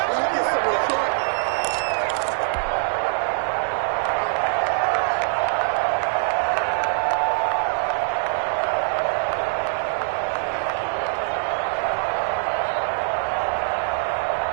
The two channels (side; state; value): left; silent; digital silence